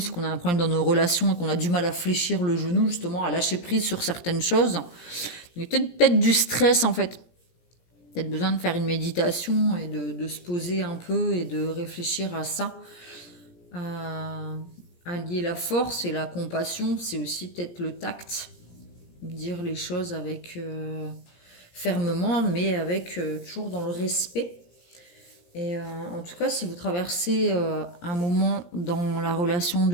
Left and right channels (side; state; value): right; late; 17 ms